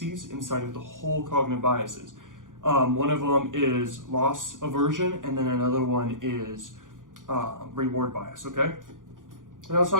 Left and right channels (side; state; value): left; late; 0.89 ms